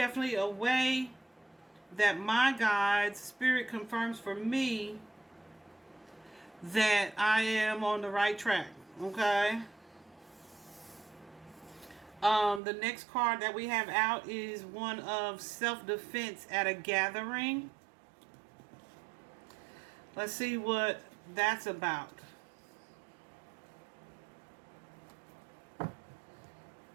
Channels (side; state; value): left; drops out; at 12.6 s